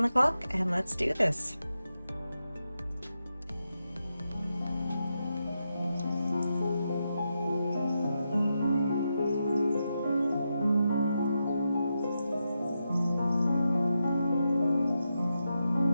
the clock, and let's do this.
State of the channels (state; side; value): inverted; both; correlation -0.87